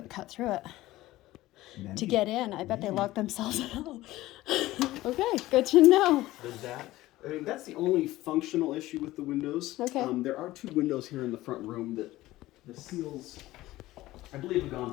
cut through it. Maybe. To get in. I bet they locked themselves out. Okay, good to know. There's that. I mean, that's the only functional issue with the windows. Okay. There are two windows here in the front room that the seals, I believe, have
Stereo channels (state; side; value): quieter; right; 16.9 dB